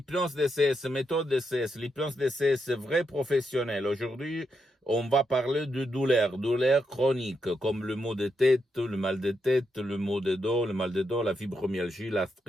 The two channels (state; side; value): normal; both; correlation 0.82